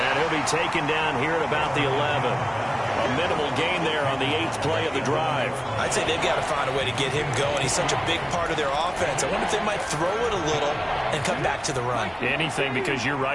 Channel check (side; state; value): both; identical; correlation 1.00